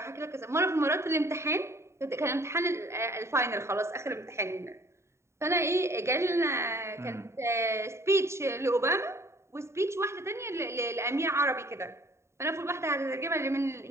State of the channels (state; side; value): late; left; 0.13 ms